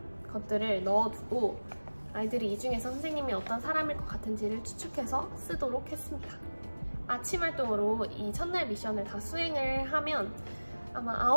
것들을 넣어두고 아이들이 이 중에서 선생님이 어떤 사람일 것 같은지를 추측해서 쓰도록 했습니다. 아침 활동으로 이 첫날 미션을 다 수행을 하면 아마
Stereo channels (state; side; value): inverted; both; correlation -1.00